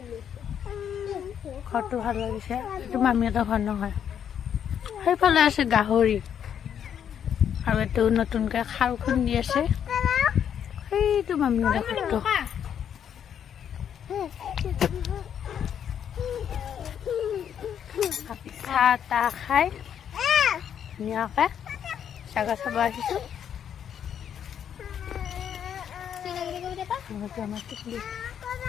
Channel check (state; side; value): quieter; right; 8.8 dB